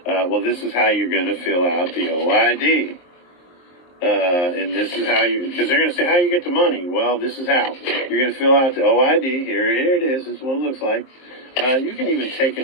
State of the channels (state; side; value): late; right; 23 ms